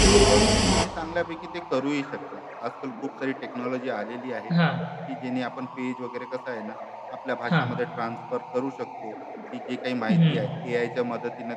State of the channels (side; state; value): both; identical; correlation 1.00